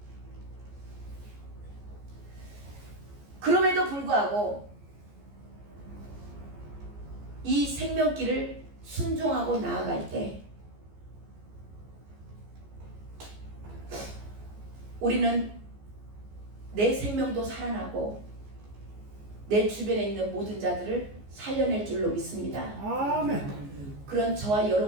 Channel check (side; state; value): left; late; 14 ms